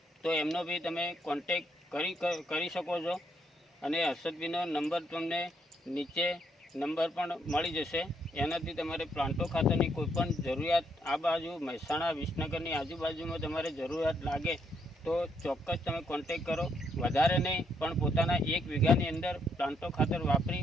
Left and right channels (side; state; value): both; normal; correlation 0.74